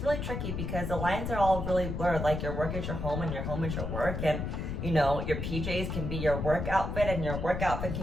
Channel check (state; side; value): noise; left; rumble, 3 dB below the sound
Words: really tricky because the lines are all really blurred. Like your work is your home and your home is your work, and you know, your PJs can be your work outfit and your work outfit